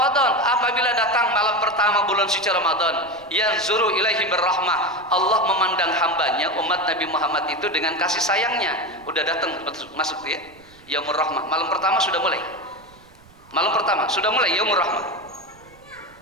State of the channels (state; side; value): noise; right; rumble, 26 dB below the sound